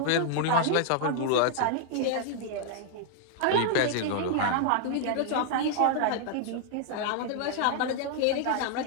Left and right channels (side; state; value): both; different; correlation 0.00